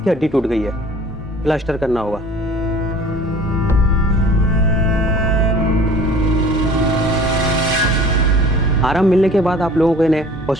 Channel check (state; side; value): normal; both; correlation 0.47